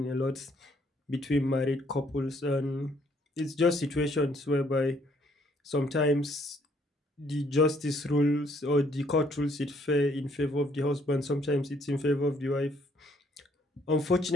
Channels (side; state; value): both; normal; correlation 0.66